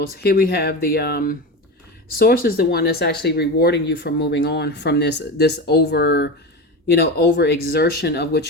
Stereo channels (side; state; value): both; normal; correlation 0.24